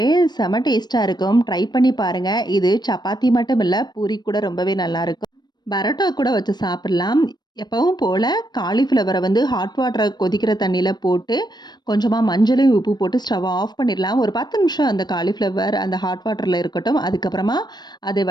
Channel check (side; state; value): right; late; 0.20 ms